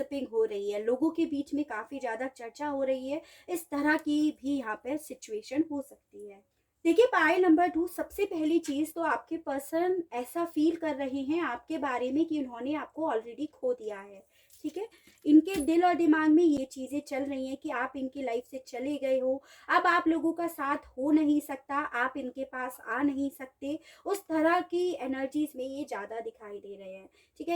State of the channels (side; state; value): both; identical; correlation 1.00